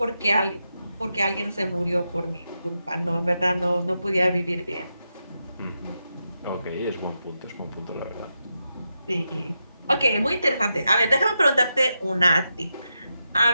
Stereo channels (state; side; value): inverted; both; correlation -0.87